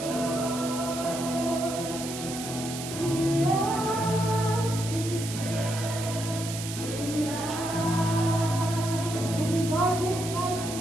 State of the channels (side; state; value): right; noise; hiss, 8 dB below the sound